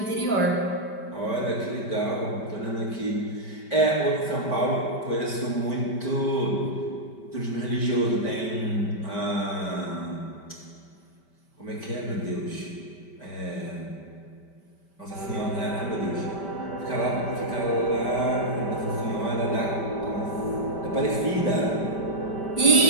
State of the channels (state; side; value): late; right; 5.1 ms